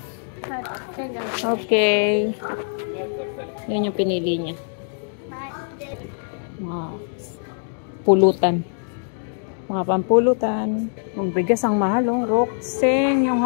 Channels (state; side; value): silent; right; digital silence